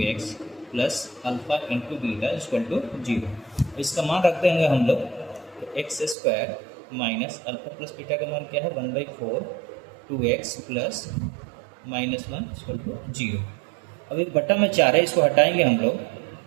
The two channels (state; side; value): drops out; left; at 6.2 s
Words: x plus alpha into beta equal to 0। इसका मान रख देंगे हम लोग। तो x² minus alpha plus beta का मान क्या है, 1/4 2x प्लस -1 इक्वल टू 0। अब एक बट्टा में 4 है, इसको हटाएंगे हम लोग।